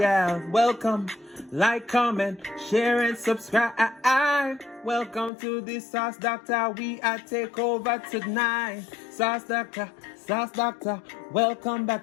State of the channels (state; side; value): drops out; right; at 5.3 s